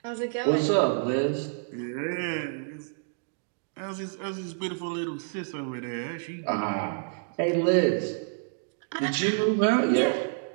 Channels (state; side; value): silent; left; digital silence